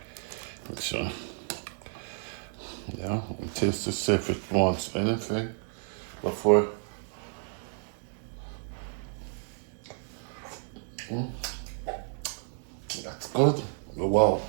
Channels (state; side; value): silent; left; 57 dB below the other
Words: Make sure. Yeah, and taste to see if it wants anything before. That's good. Wow,